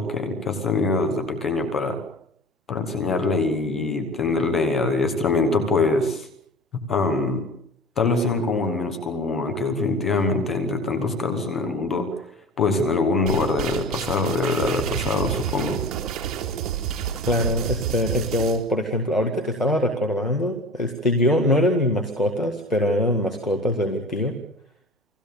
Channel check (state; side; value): normal; both; correlation 0.36